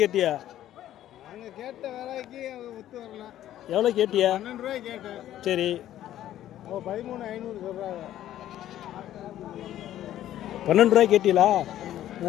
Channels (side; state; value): right; quieter; 12.5 dB